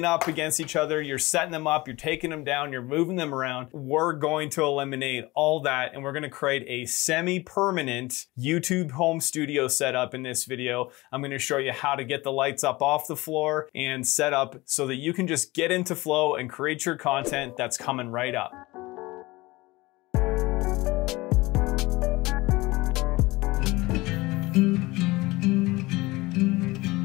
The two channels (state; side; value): quieter; right; 21.2 dB